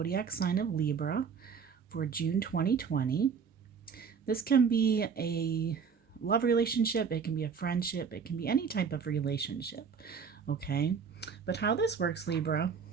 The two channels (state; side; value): quieter; left; 6.3 dB